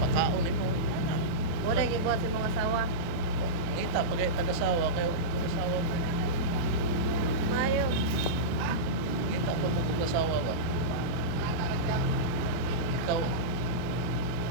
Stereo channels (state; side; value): late; left; 23 ms